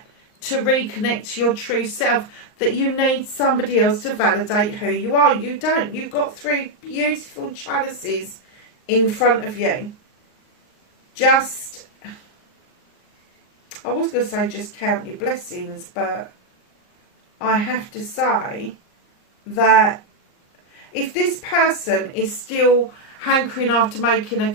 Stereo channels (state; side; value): late; right; 38 ms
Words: to reconnect to your true self that you need somebody else to validate who you are? You don't. You've got 3 beautiful chalices in front of you. Just, I was going to say just count your blessings, but I have to say that if this person is still hankering after making a